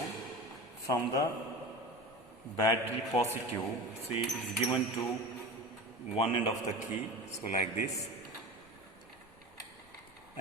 from the battery positive, see, it's given to one end of the key. So like this,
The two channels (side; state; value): left; noise; rumble, 29 dB below the sound